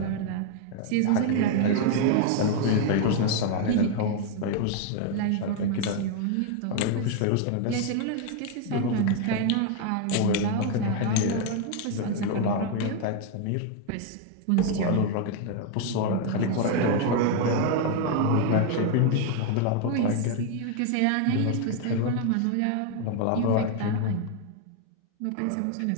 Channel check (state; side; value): different; both; correlation 0.01